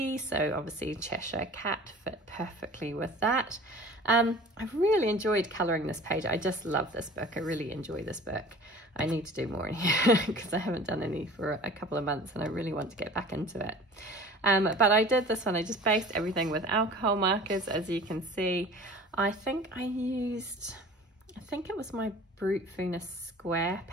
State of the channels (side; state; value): both; normal; correlation 0.44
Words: so obviously Cheshire Cat fit perfectly with that. I've really enjoyed colouring this page. I just love this book. I really enjoy this book. I need to do more in here because I haven't done any for a couple of months and I really want to get back into it. But I did this one, I just based everything with alcohol markers, as you can see. I think it was my Brute Venus square